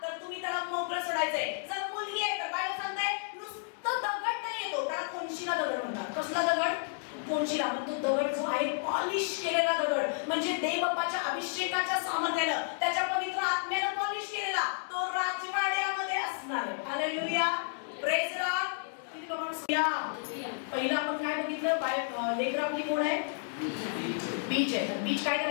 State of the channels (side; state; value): right; silent; digital silence